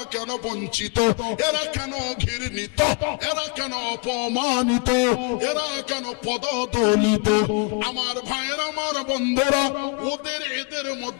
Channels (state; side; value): quieter; right; 32.8 dB